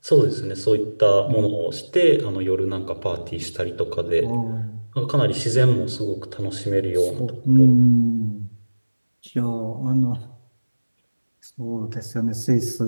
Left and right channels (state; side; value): inverted; both; correlation -1.00